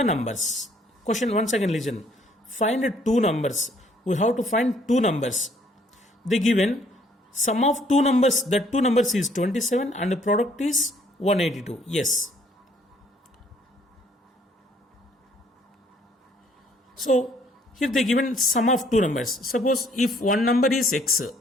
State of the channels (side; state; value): both; normal; correlation 0.63